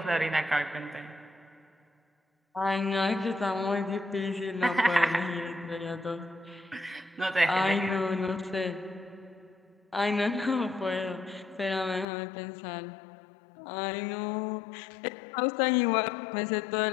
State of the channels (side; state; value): right; drops out; at 12.1 s